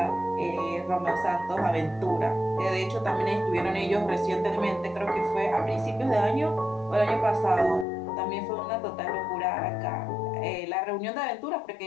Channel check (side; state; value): right; drops out; at 7.9 s